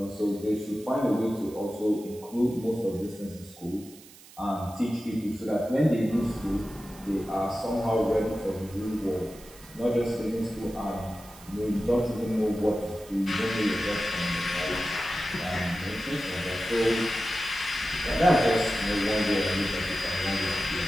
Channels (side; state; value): right; noise; hiss, 21 dB below the sound